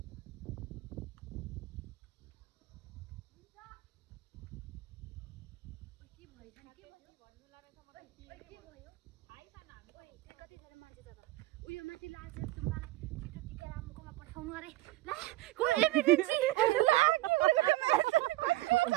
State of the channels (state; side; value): quieter; left; 17.8 dB